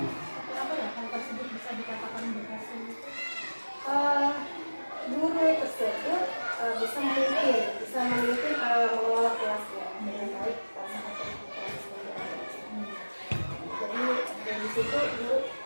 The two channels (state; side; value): inverted; both; correlation -1.00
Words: seperti apa ya? Hal tersebut bisa dikatakan berhasil itu guru tersebut bisa memimpin mengelola kelasnya dengan baik pada saat proses pembelajaran. Jadi dari situ guru